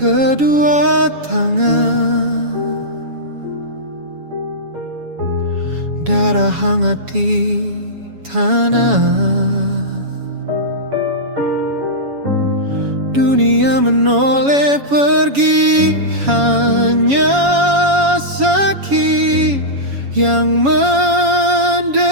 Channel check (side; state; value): left; late; 7.1 ms